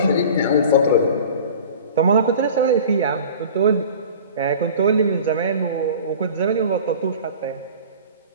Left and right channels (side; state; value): both; inverted; correlation -0.40